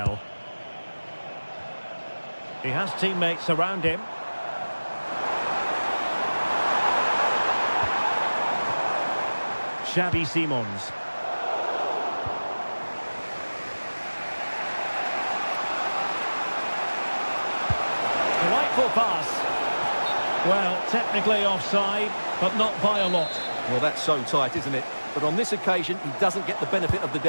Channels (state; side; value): inverted; both; correlation -1.00